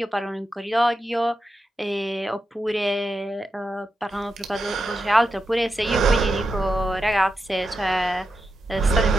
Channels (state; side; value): normal; both; correlation 0.88